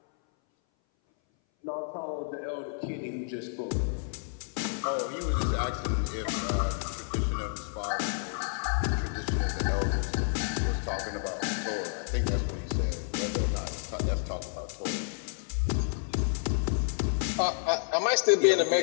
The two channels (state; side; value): silent; right; 58 dB below the other